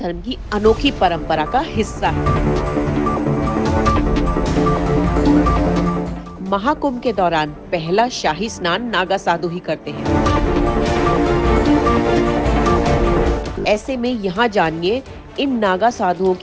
की अनोखी परंपरा का हिस्सा है। महाकुंभ के दौरान पहला शाही स्नान नागा साधु ही करते हैं। ऐसे में यहाँ जानिए इन नागा साधुओं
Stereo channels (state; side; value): identical; both; correlation 1.00